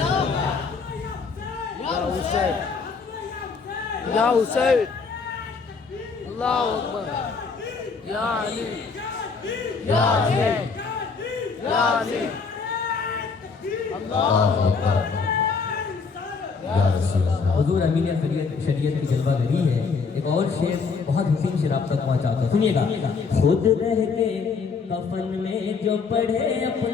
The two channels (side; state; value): right; quieter; 5.0 dB